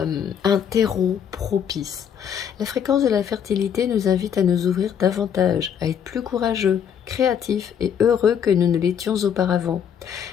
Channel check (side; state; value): right; quieter; 8.3 dB